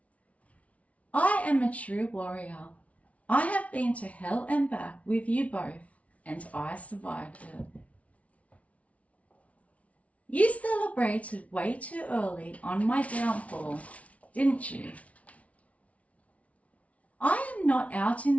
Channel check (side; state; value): right; late; 0.066 ms